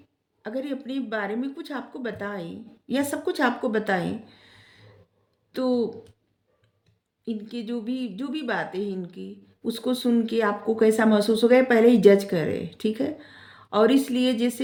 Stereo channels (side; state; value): both; identical; correlation 1.00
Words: अगर ये अपने बारे में कुछ आपको बताएं या सब कुछ आपको बताएं तो इनके जो भी बातें हैं इनकी, उसको सुन के आपको कैसा महसूस होगा, ये पहले ही जज करे, ठीक है। और इसलिए